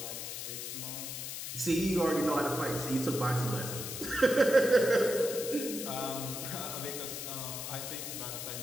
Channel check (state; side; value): noise; left; hiss, 6 dB below the sound